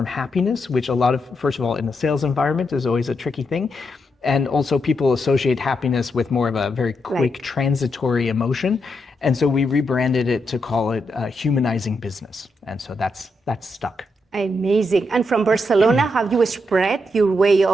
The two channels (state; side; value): normal; both; correlation 0.82